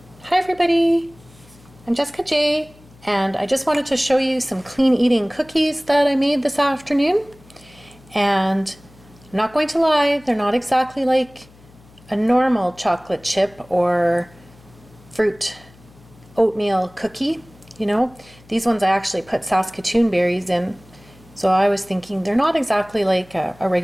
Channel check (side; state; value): left; noise; hum, 26 dB below the sound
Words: Hi everybody, I'm Jessica J, and I just wanted to show you some clean eating cookies that I made this afternoon. And I'm not going to lie, they're not exactly like a normal chocolate chip or fruit oatmeal cookie. You know, these ones I actually put Saskatoon berries in, so I was thinking they're not exactly like a